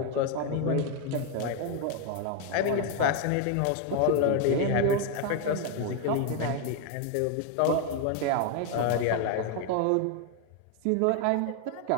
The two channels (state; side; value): different; both; correlation 0.01